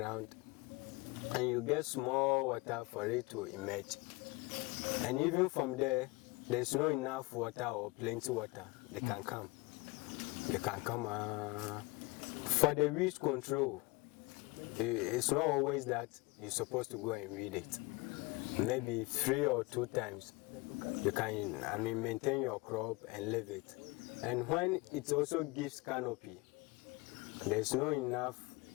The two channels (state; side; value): quieter; right; 23.5 dB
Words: and you get small water for it to emerge, and even from there, there's not enough water or plenty water, they can come. They can come. For the weed control, it's not always that you're supposed to go and weed it. Maybe 3 or 2 times. You can, maintain your crop and leave it. And when it also gives canopy, there's not enough